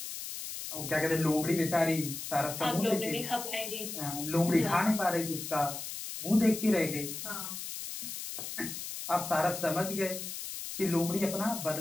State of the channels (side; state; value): left; noise; hiss, 7 dB below the sound